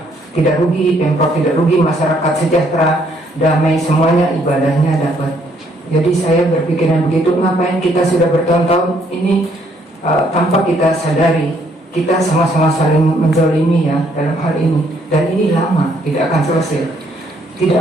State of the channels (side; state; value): both; normal; correlation 0.68